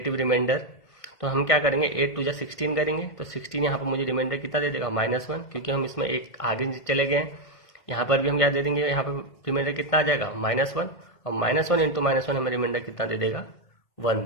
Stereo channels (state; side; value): late; right; 1.6 ms